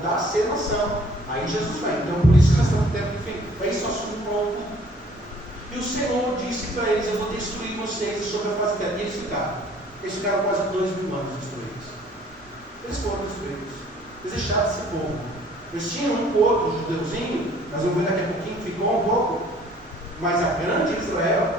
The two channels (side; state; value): both; normal; correlation 0.56